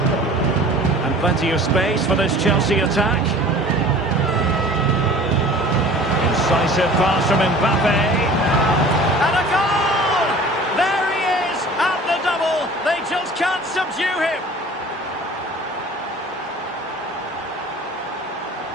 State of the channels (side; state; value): both; normal; correlation 0.45